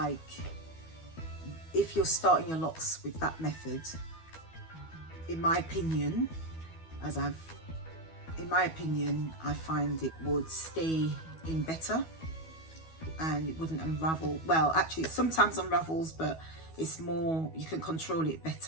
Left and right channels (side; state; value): right; late; 12 ms